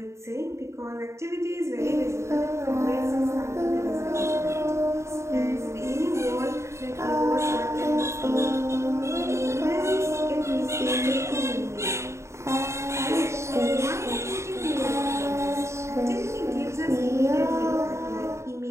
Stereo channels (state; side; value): late; left; 0.14 ms